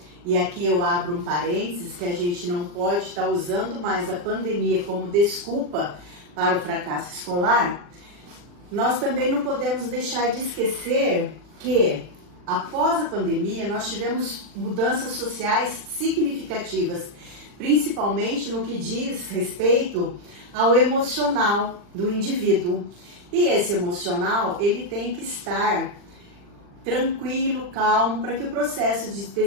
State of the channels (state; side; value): late; left; 40 ms